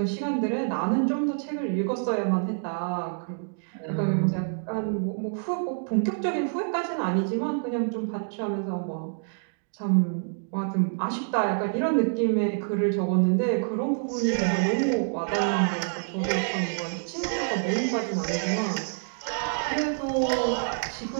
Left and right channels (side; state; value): left; silent; digital silence